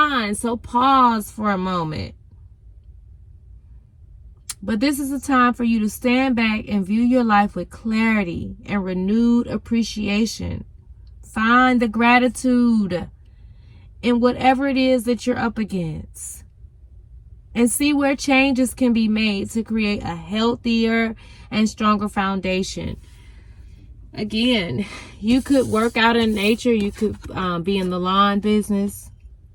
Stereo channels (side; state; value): both; identical; correlation 1.00